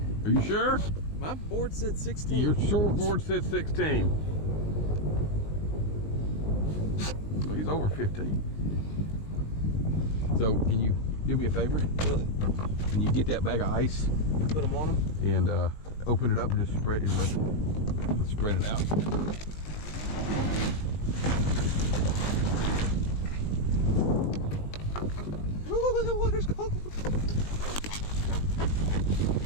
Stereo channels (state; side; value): late; right; 19 ms